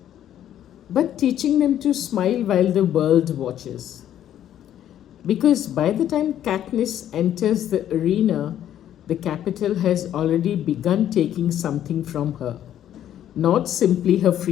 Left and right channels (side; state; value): right; quieter; 11.0 dB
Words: but teaching them to smile while the world watches? Because by the time Katniss enters the arena, the capital has already begun taking something from her. Not simply her